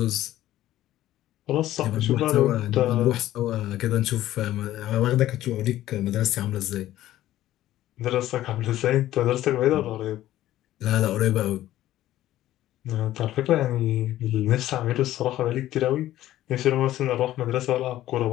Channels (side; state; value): right; quieter; 14.0 dB